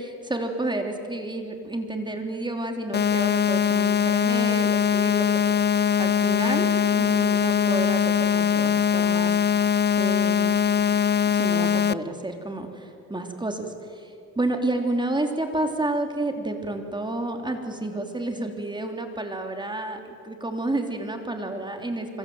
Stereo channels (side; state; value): right; quieter; 4.7 dB